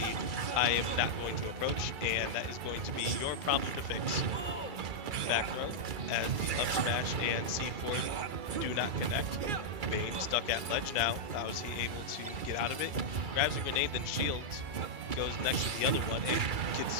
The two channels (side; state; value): left; late; 2.3 ms